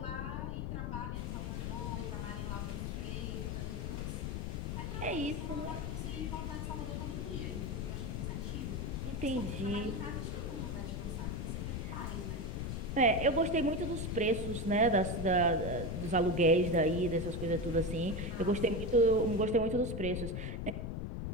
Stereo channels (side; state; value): left; noise; rumble, 3 dB below the sound